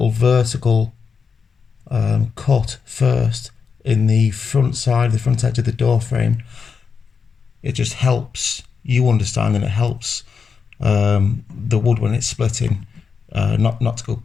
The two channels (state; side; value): quieter; right; 5.8 dB